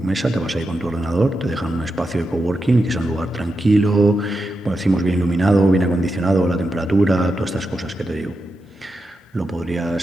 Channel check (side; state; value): both; normal; correlation 0.88